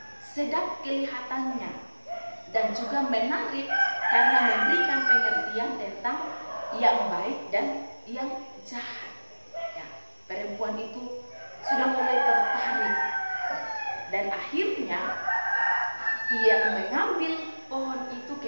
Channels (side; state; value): both; inverted; correlation -1.00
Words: sedap kelihatannya, dan juga menarik karena memberikan pengertian tentang yang baik dan yang jahat. Perempuan itu sudah mulai tertarik, dan akhirnya ia mengambil pohon itu,